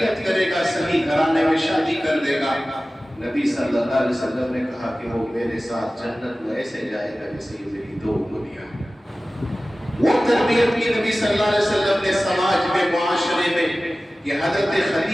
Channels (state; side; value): normal; both; correlation 0.96